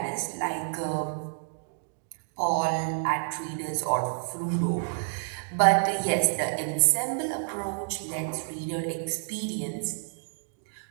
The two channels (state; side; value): silent; left; digital silence